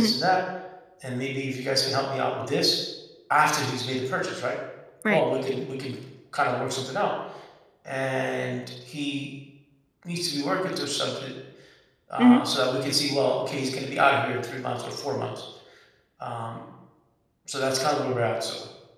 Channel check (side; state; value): both; identical; correlation 1.00